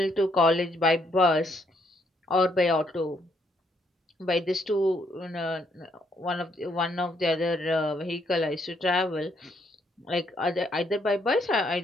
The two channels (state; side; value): normal; both; correlation 0.72